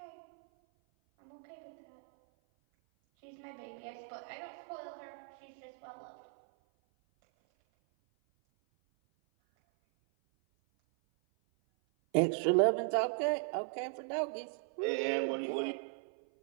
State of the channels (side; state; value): left; silent; 53 dB below the other